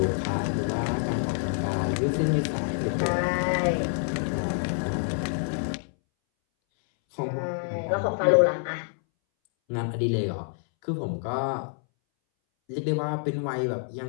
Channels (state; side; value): silent; right; 60 dB below the other